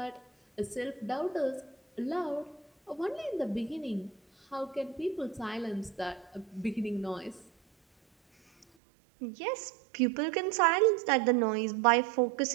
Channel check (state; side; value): drops out; left; at 8.7 s